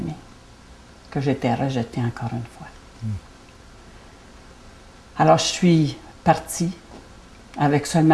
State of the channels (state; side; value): identical; both; correlation 1.00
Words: que j'étais rejetée encore une fois. Alors, je suis partie avec